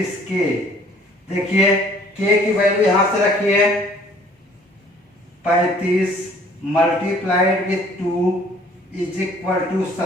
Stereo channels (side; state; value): both; normal; correlation 0.56